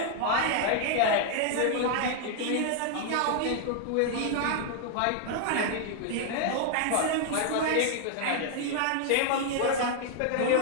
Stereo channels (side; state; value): both; different; correlation 0.00